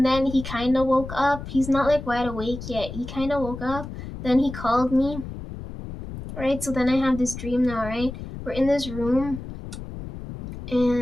then he kind of woke up. He's not like wide awake yet. He kind of woke up. Then he called me, right? So then I have this dream now, right? We're in this room,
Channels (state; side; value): noise; left; rumble, 10 dB below the sound